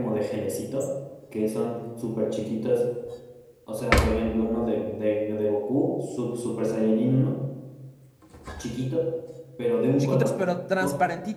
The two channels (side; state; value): both; identical; correlation 1.00